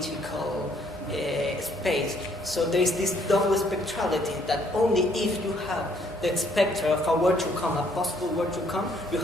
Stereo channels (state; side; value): normal; both; correlation 0.66